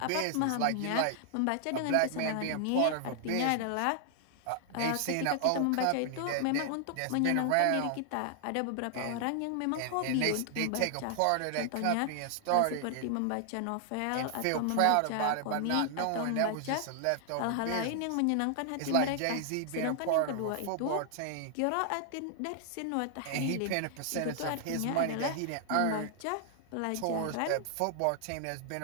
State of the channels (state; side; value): different; both; correlation 0.00